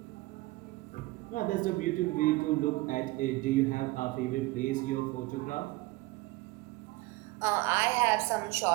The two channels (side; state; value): left; quieter; 21.1 dB